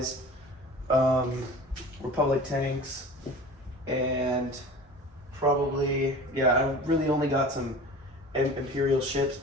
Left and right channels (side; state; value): both; normal; correlation 0.39